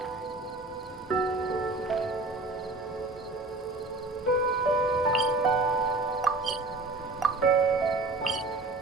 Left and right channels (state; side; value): quieter; left; 3.2 dB